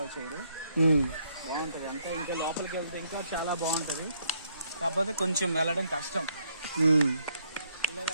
చేయరు. బాగుంటది అంతా. ఇంకా లోపలికి వెళ్తే ఇంకా చాలా బాగుంటది. కాకపోతే కొంచెం వెళ్ళడం కష్టం.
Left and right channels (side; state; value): both; inverted; correlation -0.72